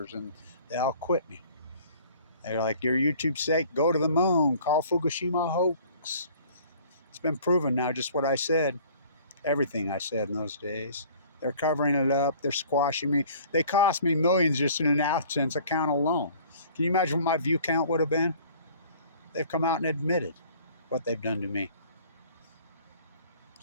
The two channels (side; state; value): both; inverted; correlation -0.51